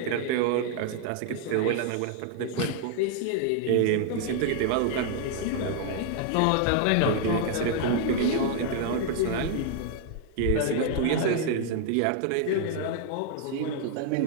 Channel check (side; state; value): both; different; correlation 0.00